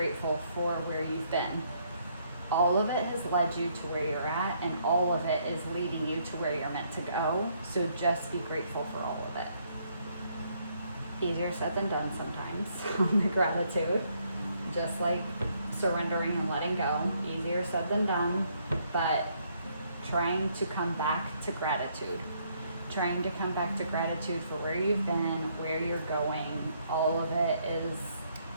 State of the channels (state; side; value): inverted; both; correlation -0.70